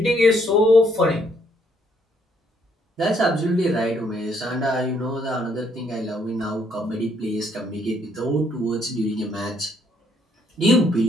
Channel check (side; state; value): both; normal; correlation 0.69